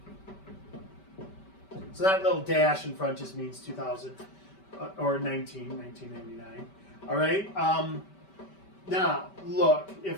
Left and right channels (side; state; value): right; late; 5.2 ms